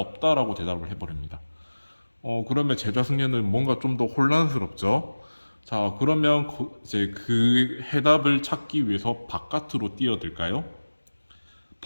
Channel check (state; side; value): inverted; both; correlation -1.00